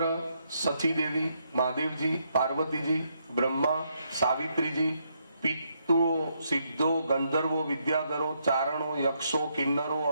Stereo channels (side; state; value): both; inverted; correlation -0.77